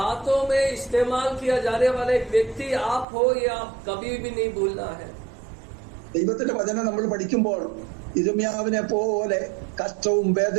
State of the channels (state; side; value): drops out; left; at 3.1 s